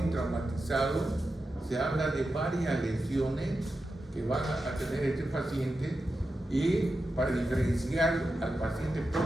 se habla de varias lesiones que van a tener este paciente, y para diferenciar al paciente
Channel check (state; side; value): normal; both; correlation 0.90